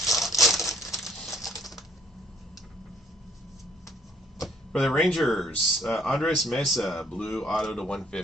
For the Rangers, Andres Mesa, blue auto to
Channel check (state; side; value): normal; both; correlation 0.64